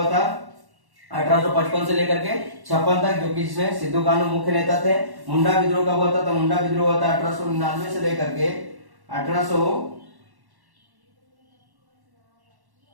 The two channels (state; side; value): late; left; 1.1 ms